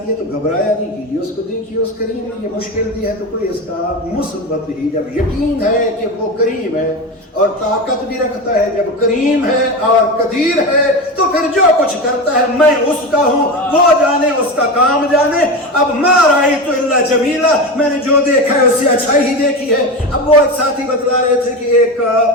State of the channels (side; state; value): both; normal; correlation 0.22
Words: ہے تو گھبرایا نہیں کیجیے، اس کو دیکھیے اس کریم نے یہ مشکل دی ہے تو کوئی اس کا مثبت ہی، جب یقین ہے کہ وہ کریم ہے اور طاقت بھی رکھتا ہے، جب کریم ہے اور قدیر ہے تو پھر جو کچھ کرتا ہے میں اس کا ہوں، وہ جانے، اس کا کام جانے. اب ما رأیت الا جمیلا، میں نے جو دیکھا ہے اس سے اچھائی ہی دیکھی ہے. اب وہ ایک ساتھی بتلا رہے تھے کہ ایک